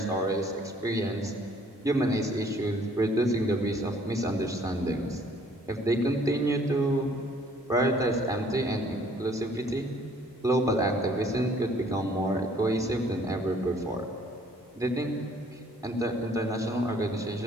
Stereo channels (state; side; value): normal; both; correlation 0.59